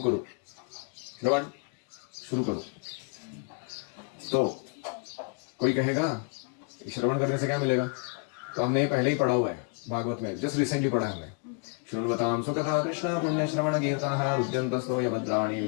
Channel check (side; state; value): right; quieter; 35.9 dB